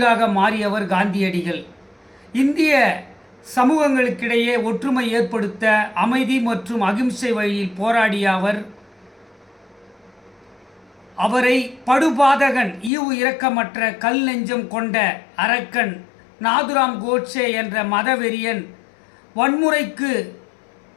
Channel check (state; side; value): drops out; right; at 12.9 s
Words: மாறியவர் காந்தியடிகள். இந்திய சமூகங்களுக்கிடையே ஒற்றுமை ஏற்படுத்த அமைதி மற்றும் அகிம்சை வழியில் போராடிய அவரை படுபாதகன், ஈவு இரக்கமற்ற, கல் நெஞ்சம் கொண்ட அரக்கன் நாதுராம் கோட்சே என்ற மதவெறியன் வன்முறைக்கு